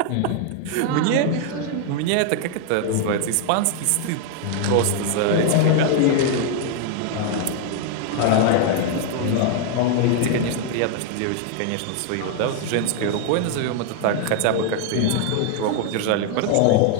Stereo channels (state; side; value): different; both; correlation 0.00